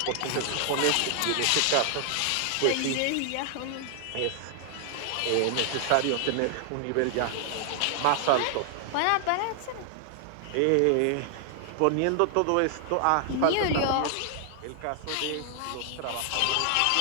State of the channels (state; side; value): different; both; correlation 0.00